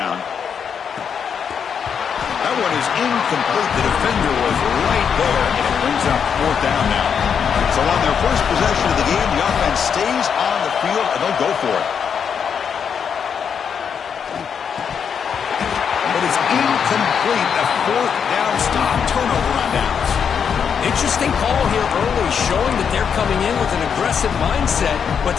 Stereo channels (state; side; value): quieter; right; 7.2 dB